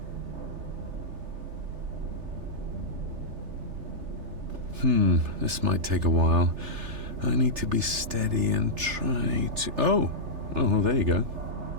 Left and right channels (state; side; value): late; left; 3.3 ms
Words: This might take a while. I need to be steady and try to... Oh, there you go.